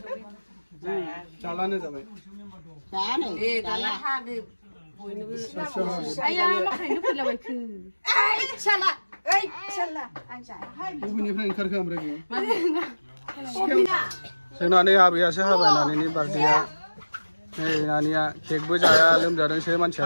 जालानो जाबाय जानो ए दाला हादो आया माखायनो फैलाबायखो साला आंसा बबेनिफ्राय ओंखारखो ओमफ्राय जोंना नै आबैयासो हाबाय नानिनि बार्थडेया नै नानिया केकबो जाया लोमजादोंसो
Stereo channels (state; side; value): inverted; both; correlation -1.00